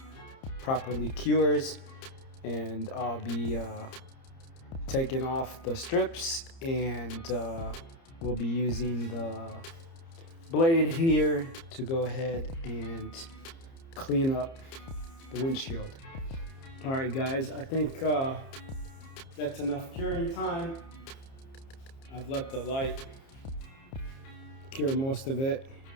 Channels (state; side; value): late; right; 30 ms